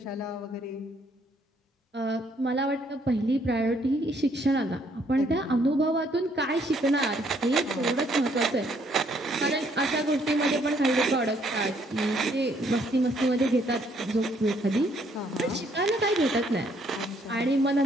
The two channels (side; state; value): both; normal; correlation 0.67